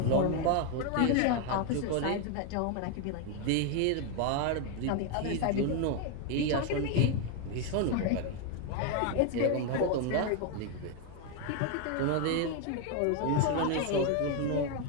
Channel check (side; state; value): both; different; correlation 0.01